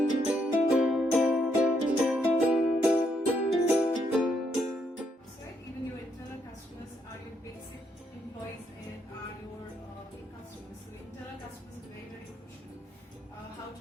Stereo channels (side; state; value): both; normal; correlation 0.75